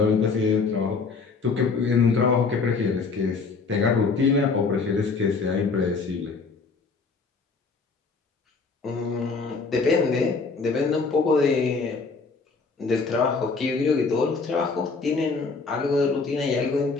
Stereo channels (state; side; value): quieter; right; 4.5 dB